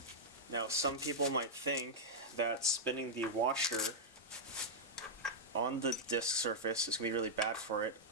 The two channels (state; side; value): normal; both; correlation -0.05